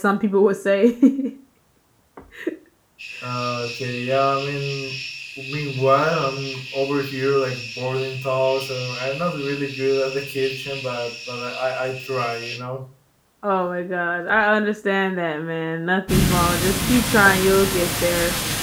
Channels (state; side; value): identical; both; correlation 1.00